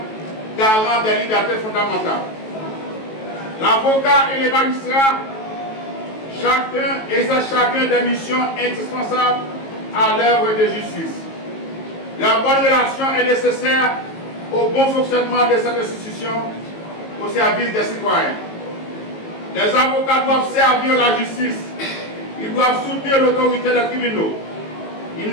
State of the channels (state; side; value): late; right; 18 ms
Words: garant des libertés fondamentales. L'avocat et les magistrats, chacun exerce des missions indispensables à l'œuvre de justice. Leur bonne relation est nécessaire au bon fonctionnement de cette institution au service des citoyens. Les avocats doivent servir la justice. Ils doivent soutenir l'autorité des tribunaux. Ils